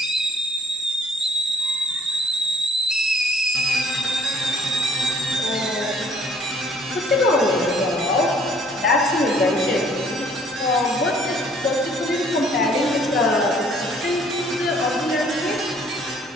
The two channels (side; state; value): both; normal; correlation 0.57